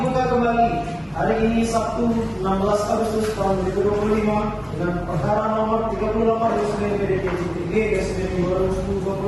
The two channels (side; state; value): both; identical; correlation 1.00